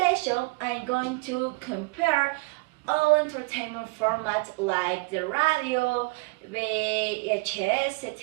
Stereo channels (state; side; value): quieter; left; 27.0 dB